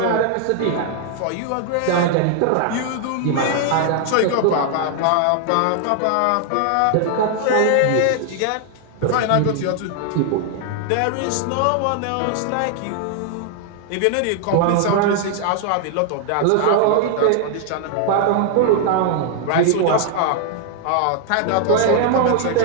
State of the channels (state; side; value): different; both; correlation 0.00